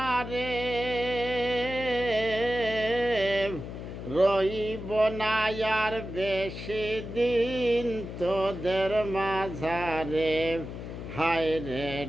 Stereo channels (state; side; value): noise; left; hum, 9 dB below the sound